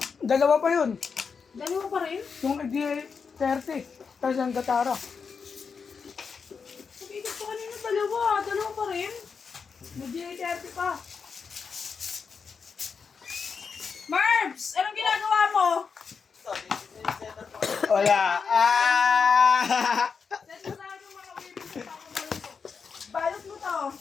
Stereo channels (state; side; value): quieter; right; 5.7 dB